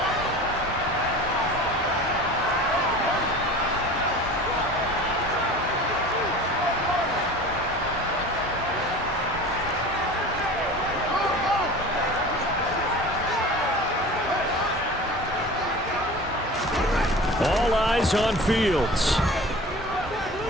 All eyes on Fields.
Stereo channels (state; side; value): normal; both; correlation 0.38